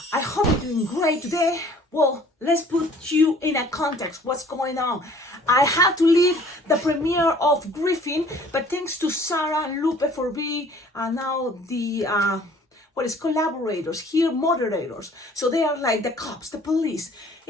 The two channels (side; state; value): both; normal; correlation 0.53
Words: I hope you're doing great today. Well, let's put you in a context. What's going on? I had to leave the premiere of Griffin, but thanks to Sarah and Lupe for being now the collaborators here, moderators. So they are like the cops, the police.